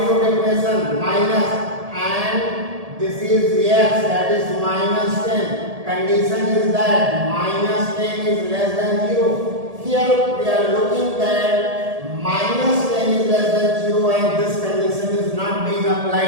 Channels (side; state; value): left; late; 1.7 ms